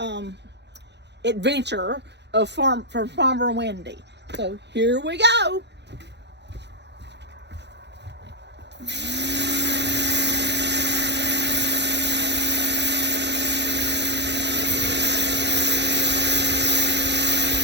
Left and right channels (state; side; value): late; left; 0.50 ms